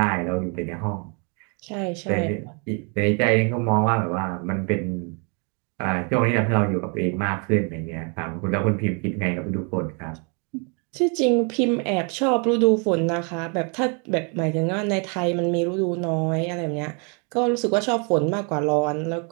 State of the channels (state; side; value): quieter; left; 35.5 dB